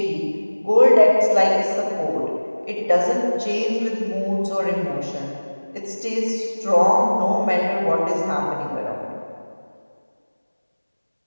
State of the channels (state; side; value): inverted; both; correlation -1.00